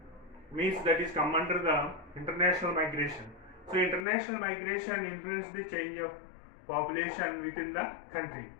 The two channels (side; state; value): right; drops out; at 4.0 s